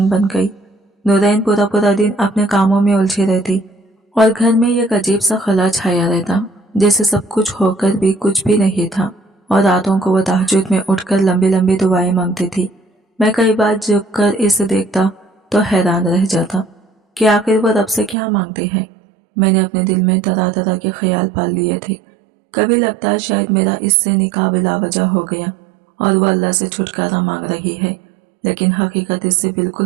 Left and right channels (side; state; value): left; drops out; at 18.2 s